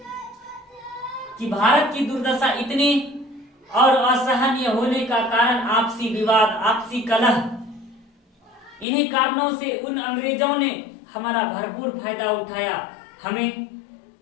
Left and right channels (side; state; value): right; drops out; at 8.8 s